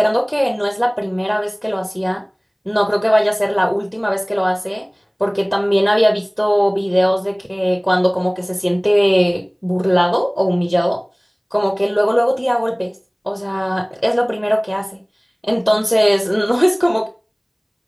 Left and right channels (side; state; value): both; identical; correlation 1.00